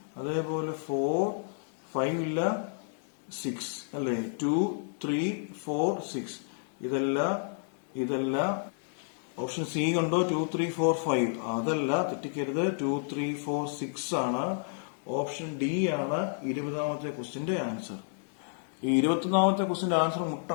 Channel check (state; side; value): silent; right; digital silence